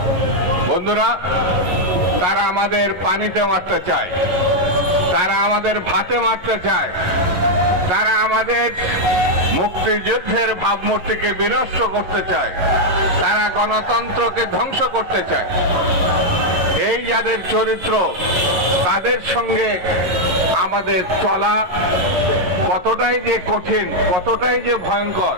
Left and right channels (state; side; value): late; left; 11 ms